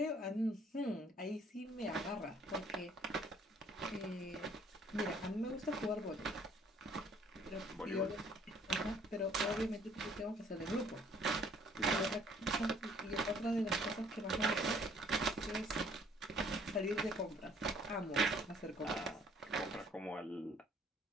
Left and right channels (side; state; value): both; normal; correlation 0.60